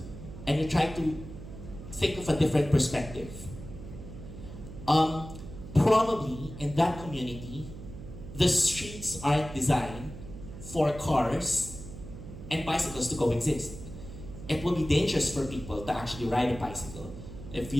and you try to think of a different perspective, probably in that community, the streets aren't designed for cars and bicycles to coexist. It will be dangerous for people to actually ride a bicycle if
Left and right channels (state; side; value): noise; right; hum, 13 dB below the sound